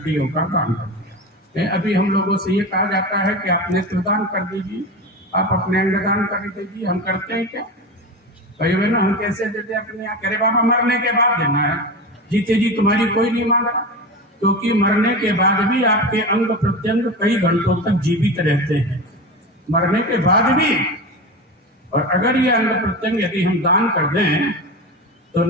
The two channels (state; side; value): normal; both; correlation 0.25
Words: का दान कर दिया। अभी हम लोगों से ये कहा जाता है कि आप नेत्रदान कर दीजिए, आप अपने अंगदान कर दीजिए। हम करते हैं क्या भाइयों बहनों? हम कैसे देते अपने यहाँ? करे बाबा मरने के बाद देना है, जीते जी तुम्हारी कोई नहीं मांग रहा, क्योंकि मरने के बाद भी आपके अंग प्रत्यंग कई घंटों तक जीवित रहते हैं, मरने के बाद भी। और अगर ये अंग प्रत्यंग यदि हम दान कर दें तो